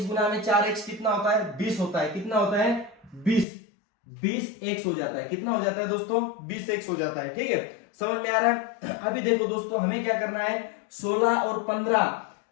गुना में 4x कितना होता है, 20 होता है। कितना होता है, 20x हो जाता है। कितना हो जाता है दोस्तों, 20x हो जाता है, ठीक है। समझ में आ रहा है। अभी देखो दोस्तों, हमें क्या करना है, 16 और 15,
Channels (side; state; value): right; drops out; at 3.5 s